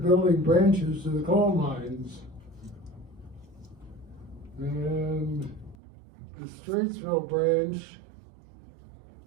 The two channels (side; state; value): left; drops out; at 5.8 s